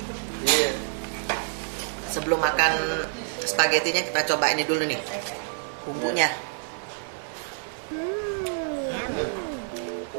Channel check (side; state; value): left; silent; digital silence